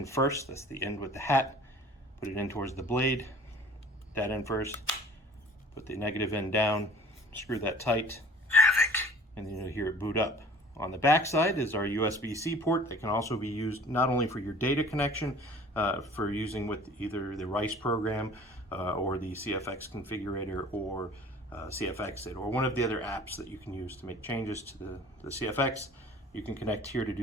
first, that's the end with the hat, put it in towards the blade, that in first, put the negative end down, screw that tight, Havoc, and then you'll hear it boot up. On the back side is our USB-C port that can also be used not only for your data connection, for using with either the RICE program or the CFX configurator, or CFXit, or one of the other apps that you can use to make changes to the CFX. You can connect here to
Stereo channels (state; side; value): normal; both; correlation 0.47